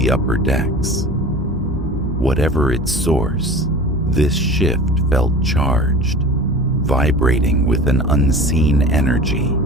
upper decks. Whatever its source, this shift felt charged, vibrating with an unseen energy.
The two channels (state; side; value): normal; both; correlation 0.38